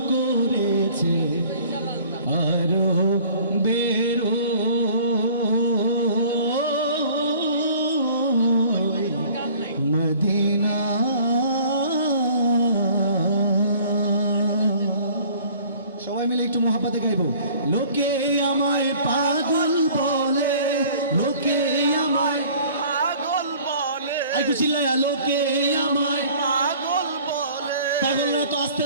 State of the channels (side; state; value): both; inverted; correlation -0.51